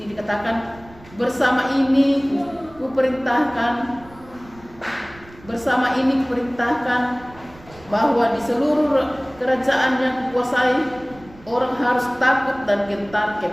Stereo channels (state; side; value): noise; right; rumble, 22 dB below the sound